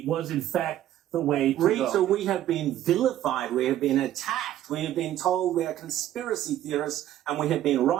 was, in fact, the way to go. Rita, we have been vilified, we have been attacked, we have been told we are conspiracy theorists, and we have been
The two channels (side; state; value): left; quieter; 12.5 dB